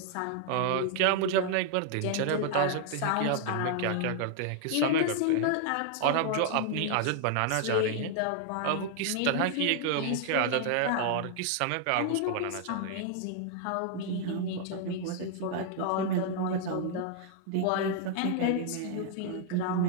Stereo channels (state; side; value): different; both; correlation 0.00